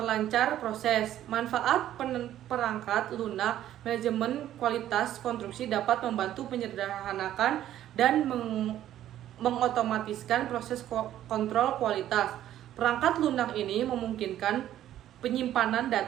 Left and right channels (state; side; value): quieter; left; 12.2 dB